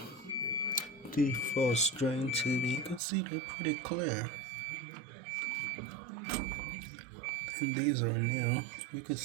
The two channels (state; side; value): drops out; left; at 3.0 s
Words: defrost drain tubes. You can see they're pretty clear. And these are new. You can